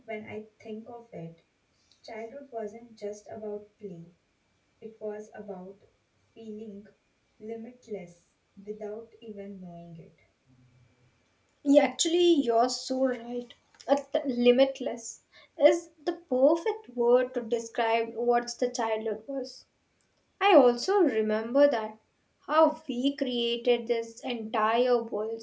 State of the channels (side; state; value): both; identical; correlation 1.00